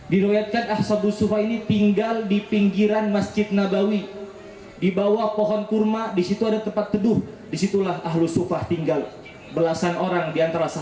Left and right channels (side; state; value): both; identical; correlation 1.00